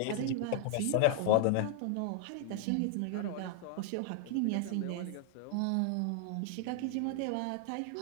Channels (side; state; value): both; different; correlation -0.01